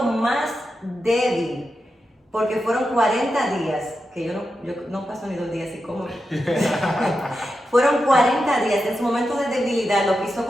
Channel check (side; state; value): both; normal; correlation 0.89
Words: más débil, porque fueron 40 días, que yo no paso ni 2 días y como. Fueron 40 días, en su momento de debilidad lo quiso